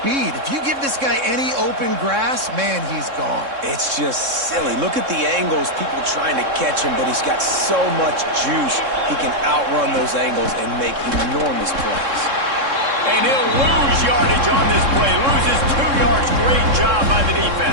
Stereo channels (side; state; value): left; late; 3.6 ms